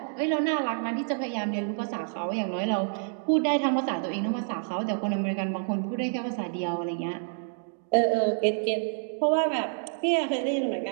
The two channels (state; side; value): silent; left; digital silence